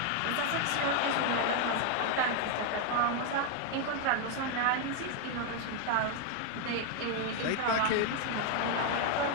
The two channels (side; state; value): both; different; correlation 0.01